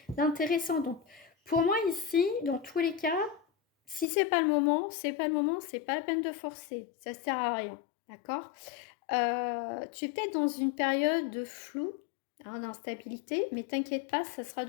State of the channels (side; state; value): right; drops out; at 4.0 s